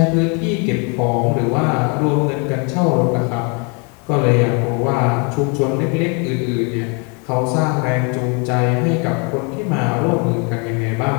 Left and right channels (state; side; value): quieter; right; 34.3 dB